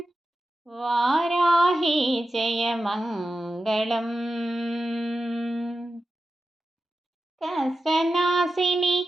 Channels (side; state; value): both; normal; correlation 0.92